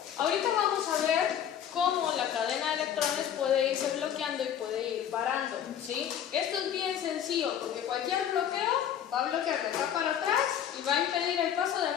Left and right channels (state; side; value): quieter; right; 9.7 dB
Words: ahorita vamos a ver cómo la cadena de electrones puede irse bloqueando y puede ir parando, ¿sí? Esto es bien sencillo porque cualquier bloqueo va a bloquear de acá para atrás y va a impedir el paso de